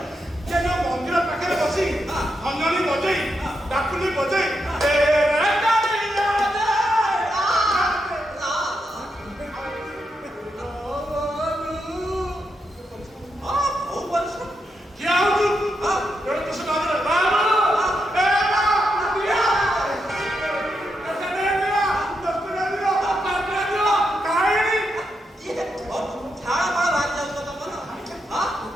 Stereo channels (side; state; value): both; normal; correlation 0.83